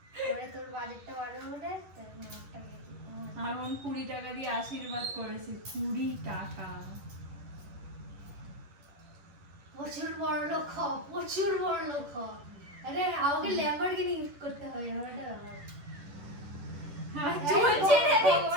এবারে তোর বাজেটটা বাড়বে বলে আমার 20 টাকা দিয়ে আশীর্বাদ করেছে, 20 টাকা। প্রচুর বড় লোক হ, প্রচুর বড় লোক হ। আরে আমাকে ল্যাম্বরগিনি গিফট করতে হবে, আমার একটা ব্যাপার। চলছে রে,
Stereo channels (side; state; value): left; late; 11 ms